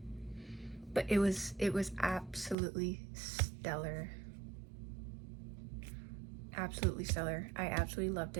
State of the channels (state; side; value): drops out; left; at 2.6 s